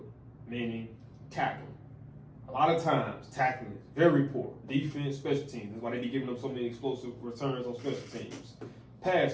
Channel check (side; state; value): both; identical; correlation 1.00